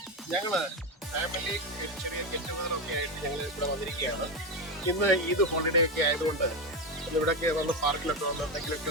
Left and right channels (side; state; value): both; normal; correlation 0.13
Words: ഞങ്ങള് family ചെറിയ ഗെറ്റുഗതറൊക്കെ ആയിട്ട് ഞങ്ങൾ ഇവിടെ വന്നിരിക്കുകയാണ്. ഇന്ന് ഈദ് ഹോളിഡേ ഒക്കെ ആയതുകൊണ്ട് ഇവിടെയൊക്കെ വന്ന് പാർക്കിലൊക്കെ വന്ന് എന്തെങ്കിലുമൊക്കെ